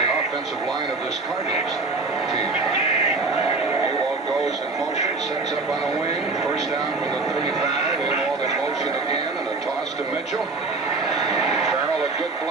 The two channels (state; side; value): quieter; left; 3.9 dB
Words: offensive line of this Cardinals team. Ewald goes in motion, sets up on a wing. First down from the 35. Ewald in motion again, and a toss to Mitchell. Farrell, a good